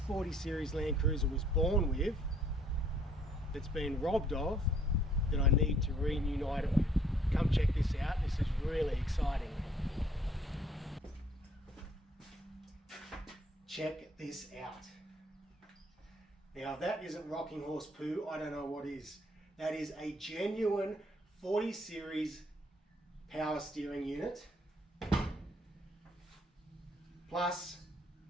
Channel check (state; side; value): normal; both; correlation 0.63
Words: series Land Cruiser was born with that's been robbed of that I need to reunite it with. Come check this out, this is really exciting. Check this out. Now, if that isn't rocking horse poo, I don't know what is. That is a genuine 40 series power steering unit, plus